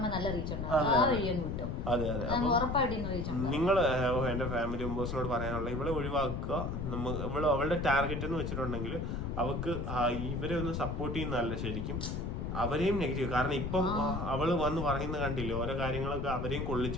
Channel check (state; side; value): noise; left; rumble, 3 dB below the sound